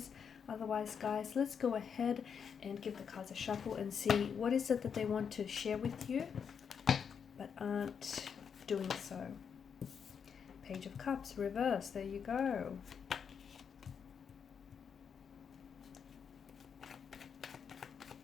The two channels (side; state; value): right; quieter; 6.9 dB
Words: Otherwise, guys, let's go ahead and give the cards a shuffle and see what is it that they want to share with you but aren't doing so. Page of Cups, reverse, there you go.